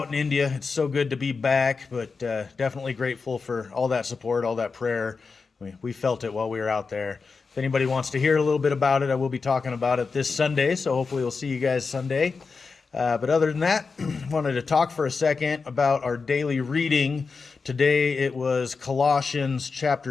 in India. It's so good to be back, but definitely grateful for all that support, all that prayer. We felt it while we were out there. If anybody wants to hear a little bit about it, I will be talking about it this Sunday, so hopefully we'll see you guys Sunday. But other than that, wanted to talk for a second about our daily reading. Today it was Colossians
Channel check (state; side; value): quieter; right; 4.7 dB